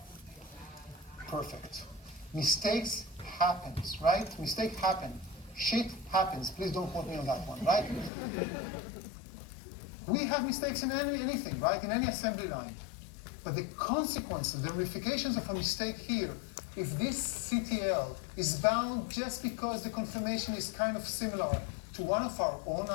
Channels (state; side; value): drops out; right; at 8.1 s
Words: Perfect. Mistakes happens, right? Mistake happen. Shit happens. Please don't quote me on that one, right? We have mistakes in anything, right? In any assembly line. But the consequences, the ramifications of a mistake here, if this CTL is bound just because the conformation is kind of similar to one of our own